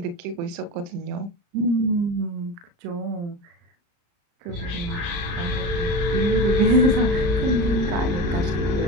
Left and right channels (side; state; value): left; late; 35 ms